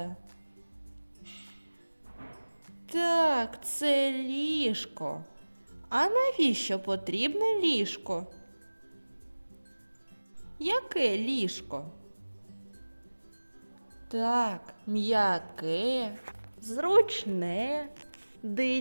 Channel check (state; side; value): inverted; both; correlation -1.00